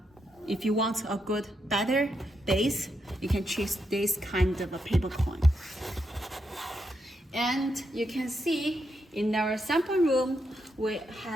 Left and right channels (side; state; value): both; normal; correlation 0.82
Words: want a good, better bass, you can choose this kind of a paper cone. And you can see in our sample room, we